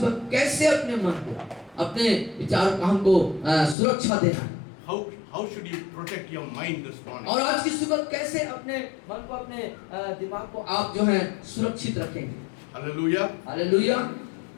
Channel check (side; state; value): right; drops out; at 3.8 s